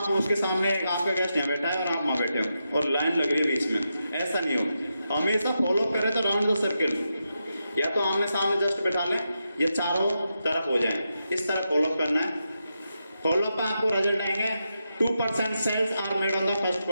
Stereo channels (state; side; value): inverted; both; correlation -0.86